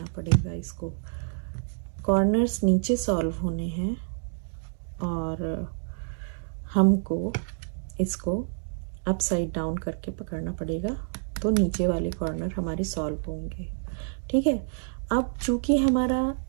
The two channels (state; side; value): silent; left; digital silence